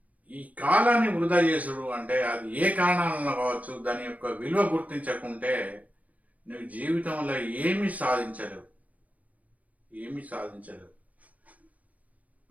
ఈ కాలాన్ని వృధా చేసుడు అంటే అది ఏ కారణాలలో కావచ్చు, దాని యొక్క విలువ గుర్తించకుంటే నువ్వు జీవితంలో ఏమీ సాధించలేవు. ఏమీ సాధించలేవు.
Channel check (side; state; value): left; late; 0.072 ms